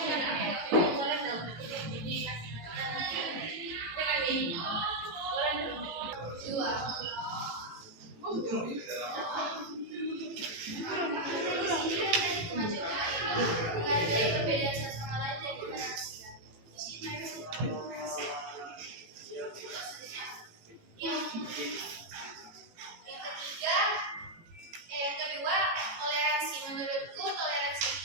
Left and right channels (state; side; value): late; left; 18 ms